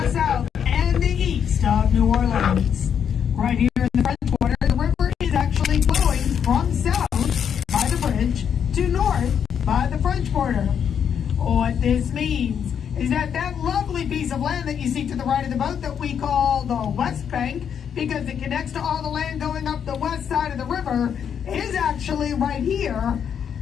south, and the east of New Orleans. Right here in the French Quarter, the river is actually flowing from south by the bridge to north by the French Quarter. What this means is that that lovely piece of land that you see to the right of the boat that we call the West Bank, because it connects to all the land going up the west side of the river, is actually right here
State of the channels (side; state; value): right; quieter; 8.0 dB